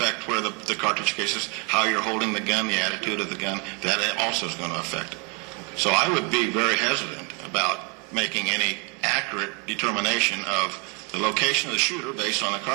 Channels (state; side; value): quieter; left; 33.5 dB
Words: where the cartridge case is, how you're holding the gun, the attitude of the gun. That also is going to affect it. So I would be very hesitant about making any accurate determination of the location of the shooter based on the